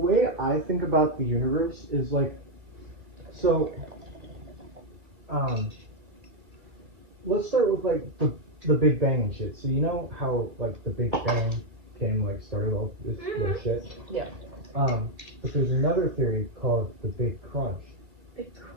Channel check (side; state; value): left; late; 2.3 ms